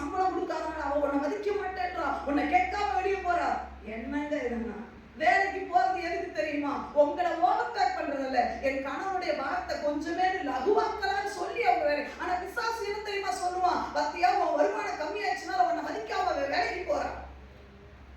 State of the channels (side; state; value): both; identical; correlation 1.00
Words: கொடுக்காதனால அவ உன்னை மதிக்க மாட்டேன்றா, உன்னை கேட்காம வெளியே போறா. என்னங்க இதுன்னா வேலைக்கு போறது எதுக்கு தெரியுமா? உங்களை ஓவர்டேக் பண்றது இல்ல, என் கணவனுடைய பாரத்தை கொஞ்சமே லகுவாக்கலான்னு சொல்லி அவங்க வேலை. ஆனா பிசாசு என்ன தெரியுமா சொல்லுவான்? பத்தியா உன் வருமானம் கம்மியாச்சுனால உன்னை மதிக்காம வேலைக்கு போறான்.